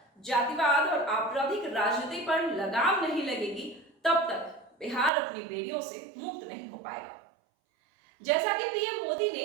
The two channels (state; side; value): drops out; left; at 5.1 s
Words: जातिवाद और आपराधिक राजनीति पर लगाम नहीं लगेगी, तब तक बिहार अपनी बेड़ियों से मुक्त नहीं हो पाएगा। जैसा कि पीएम मोदी